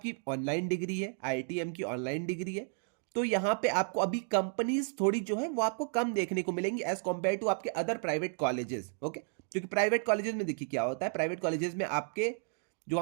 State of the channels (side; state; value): left; silent; 56 dB below the other